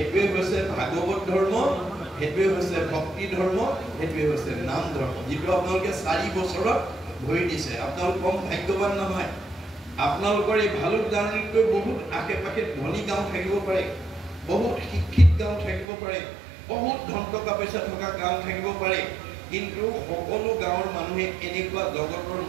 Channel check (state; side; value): drops out; left; at 15.9 s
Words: হৈছে ভাগৱত ধৰ্ম, সেইটোৱে হৈছে ভক্তি ধৰ্ম, সেইটোৱে হৈছে নাম ধৰ্ম, যিটো আপোনালোকে 4 বছৰত ভৰি দিছে। আপোনালোক কম ভাগ্যৱান নহয়। আপোনালোকৰ এই ভালুক জাৰ্ণিতকৈ বহুত আশে পাশে ধনী গাঁও থাকিব পাৰে, বহুত শিক্ষিত গাঁও থাকিব পাৰে, বহুত ধন টকা পইচা থকা গাঁও থাকিব পাৰে, কিন্তু সকলো গাঁৱৰ মানুহে এনেকুৱা জগতৰ